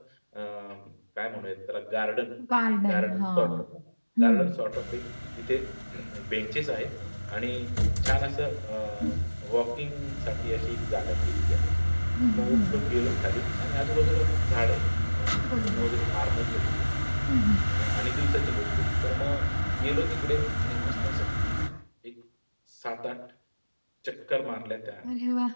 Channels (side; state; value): both; inverted; correlation -1.00